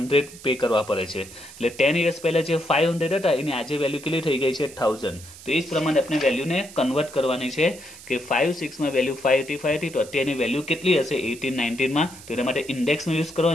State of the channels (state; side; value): noise; right; hiss, 18 dB below the sound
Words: પે કરવા પડે છે. એટલે 10 years પહેલા જે 500 હતા એની આજે વેલ્યુ કેટલી થઈ ગઈ છે? 1000. તો એ જ પ્રમાણે આપણે વેલ્યુને કન્વર્ટ કરવાની છે કે 5-6 માં વેલ્યુ 585 હતી, તો અત્યારની વેલ્યુ કેટલી હશે 18-19 માં? તો એના માટે ઇન્ડેક્સનો યુઝ